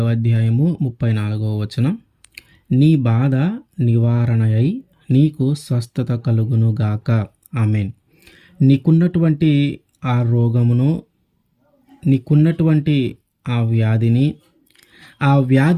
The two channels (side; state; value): both; identical; correlation 1.00